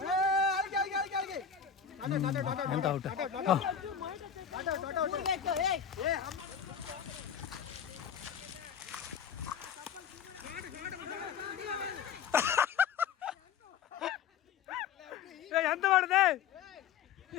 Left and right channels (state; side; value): quieter; right; 7.5 dB